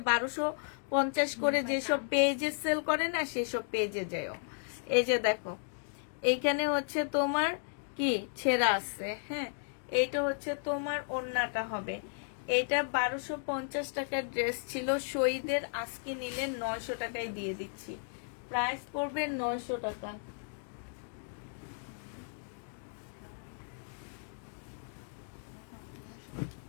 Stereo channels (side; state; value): right; silent; digital silence